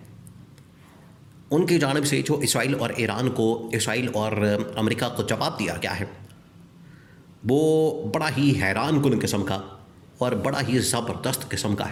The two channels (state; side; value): identical; both; correlation 1.00